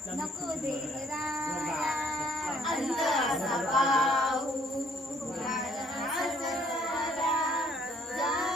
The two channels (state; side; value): normal; both; correlation 0.62